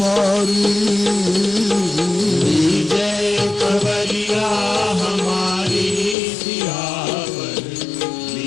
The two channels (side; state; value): right; drops out; at 6.2 s